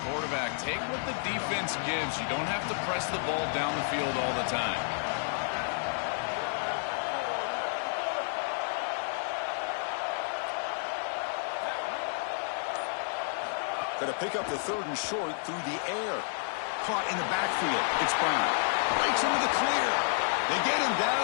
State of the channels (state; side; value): silent; right; digital silence